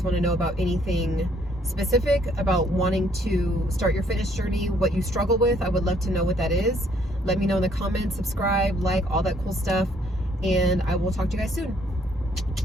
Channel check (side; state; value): both; normal; correlation 0.66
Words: want to know about anything specific about wanting to start your fitness journey, what you struggle with. I would love to know what that is. Let me know in the comments, subscribe, like, all that cool stuff, and I will talk to you guys soon.